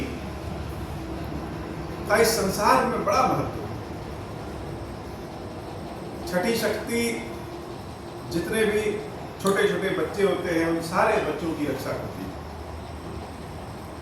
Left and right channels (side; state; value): both; identical; correlation 1.00